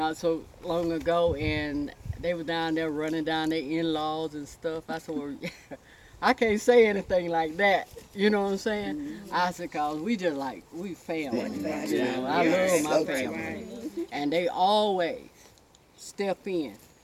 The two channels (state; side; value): identical; both; correlation 1.00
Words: so long ago, and they were down there running down their in-laws and stuff. I said, well, I can't say anything like that. You know what I'm saying? I said, cause we just like, we family. You know, I love my family. And they always step in